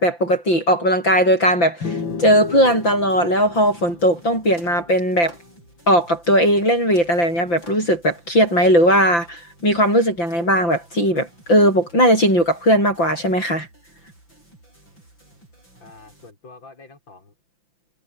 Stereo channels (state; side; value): late; right; 5.9 ms